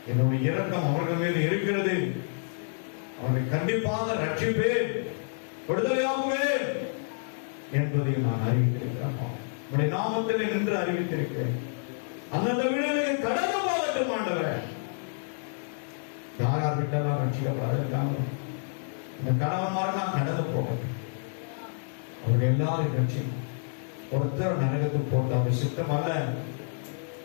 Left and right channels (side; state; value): right; silent; digital silence